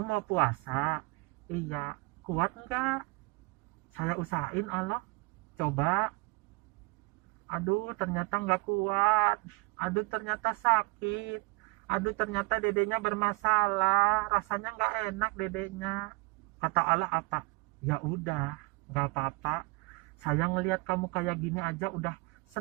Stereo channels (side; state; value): left; quieter; 25.4 dB